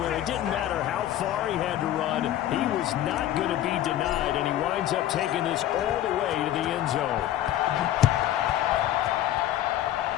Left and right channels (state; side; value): quieter; right; 12.6 dB